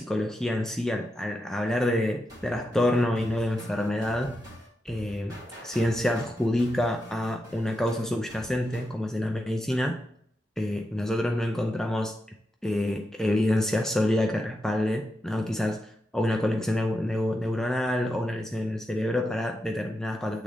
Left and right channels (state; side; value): normal; both; correlation 0.86